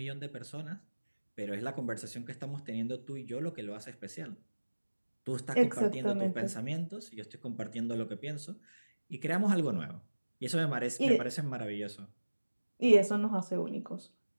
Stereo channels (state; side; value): inverted; both; correlation -1.00